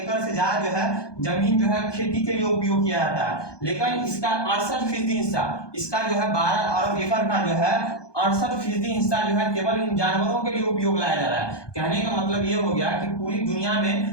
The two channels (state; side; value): late; right; 1.2 ms